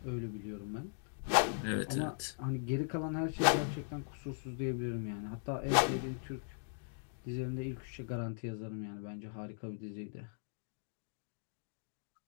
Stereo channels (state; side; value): silent; right; digital silence